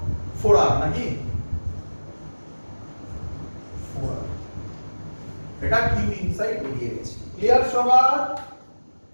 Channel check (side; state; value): both; inverted; correlation -1.00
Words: 4r নাকি? 4r। এটা কিউ ইনসাইড বেরিয়ে গেছে। ক্লিয়ার সবার?